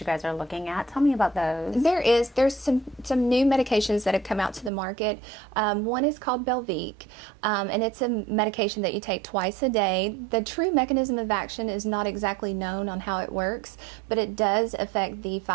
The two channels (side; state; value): left; drops out; at 4.7 s